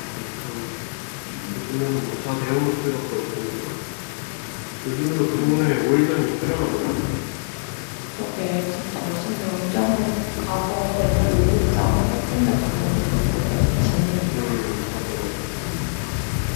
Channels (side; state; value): right; silent; digital silence